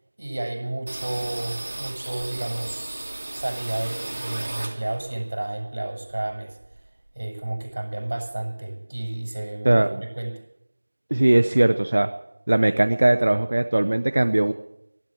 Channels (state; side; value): inverted; both; correlation -1.00